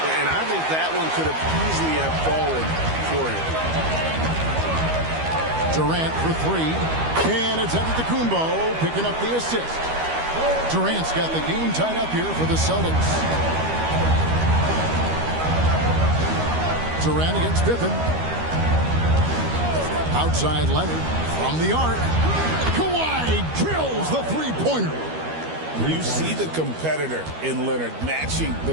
And I think that one could have easily have fallen for him. Durant for 3. And it's Antetokounmpo picking up the assist. Durant's got the game tied up here for the Celtics. Durant against Pippen. Outside Leonard from the arc. Kawhi drills the three-pointer. You see the competitor in Leonard matching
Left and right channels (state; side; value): late; left; 13 ms